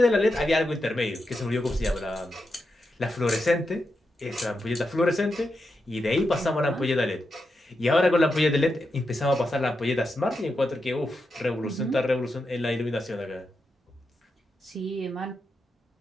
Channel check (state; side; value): normal; both; correlation 0.87